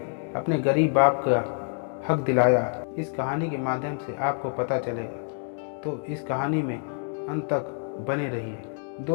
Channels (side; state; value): right; silent; 56 dB below the other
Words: अपने गरीब बाप का हक दिलाया, इस कहानी के माध्यम से आपको पता चलेगा। तो इस कहानी में अंत तक बने रहिए।